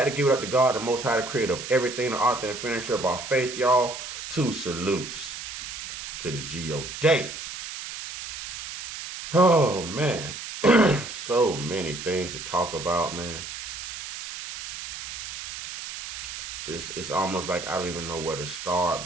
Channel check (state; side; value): noise; right; hiss, 9 dB below the sound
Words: to give it up to God, the Most High, the creator of everything, the author and finisher of our faith, y'all. 2 salutes to the G.O.D. Oh, man. So many things to talk about, man. It's almost like I don't even know where to start,